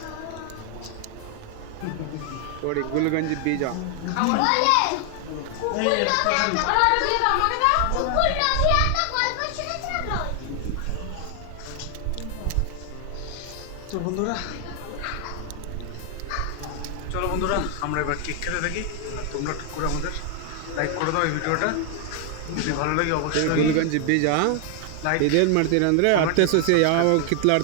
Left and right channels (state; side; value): different; both; correlation 0.00